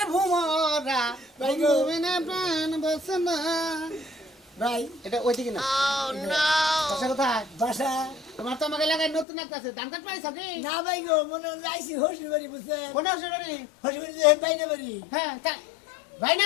ভুমরা ভাই গো ঘুমিরে প্রাণ বাসে না ভাই এটা ওইদিকে না বাসা কোথায় বাসা তোমার তো আমাকে এলাকায় নতুন একটা আছে ধান কাট পাইছ কি না ভাই গো মনে আইসি হসি বাড়ি বুঝছে কোন হসুরি হসি বাড়ি বাইরে বাড়ি হ্যাঁ ভাই না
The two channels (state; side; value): drops out; right; at 9.2 s